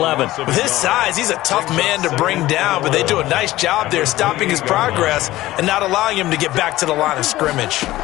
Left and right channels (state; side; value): quieter; right; 16.5 dB